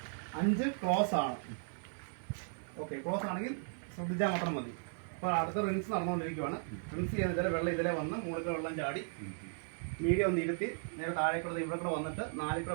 5 ക്ലോസ് ആണ്. ഓക്കെ, ക്ലോസ് ആണെങ്കിൽ ശ്രദ്ധിച്ചാൽ മാത്രം മതി. അപ്പോൾ അടുത്ത റിൻസ് നടന്നുകൊണ്ടിരിക്കുകയാണ്. റിൻസ് ചെയ്തിട്ട് വെള്ളം ഇതിലെ വന്ന് മുകളിൽ വെള്ളം ചാടി മീഡിയം ഒന്ന് ഇരുത്തി നേരെ താഴേക്കൂടെ ഇവിടെ കൂടെ വന്നിട്ട് 4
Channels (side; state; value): left; silent; 54 dB below the other